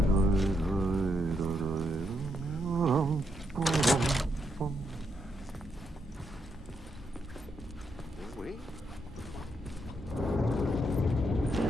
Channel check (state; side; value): normal; both; correlation 0.79